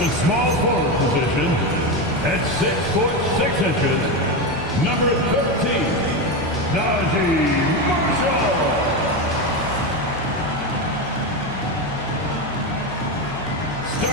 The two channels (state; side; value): normal; both; correlation 0.15